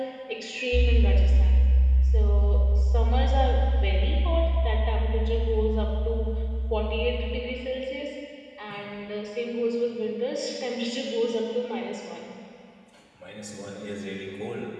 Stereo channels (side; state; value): both; identical; correlation 1.00